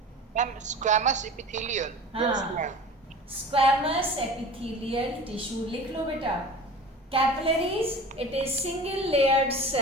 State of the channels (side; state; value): both; normal; correlation 0.38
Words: Ma'am squamous epithelial. हाँ, स्क्वैमस एपिथेलियल टिश्यू लिख लो बेटा. Capillaries it is single layered